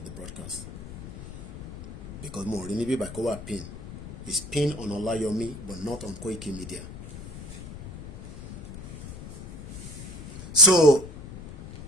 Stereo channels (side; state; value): left; noise; rumble, 12 dB below the sound